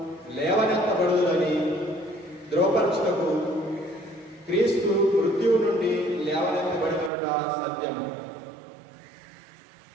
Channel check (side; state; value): left; drops out; at 7.1 s